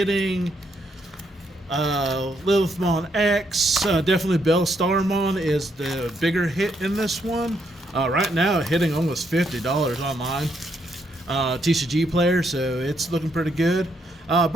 Lilithmon X. Definitely Bellstarmon is the bigger hit in this one. Right now hitting almost $50 online. TCG Player, so it's looking pretty good.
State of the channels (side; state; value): both; normal; correlation 0.75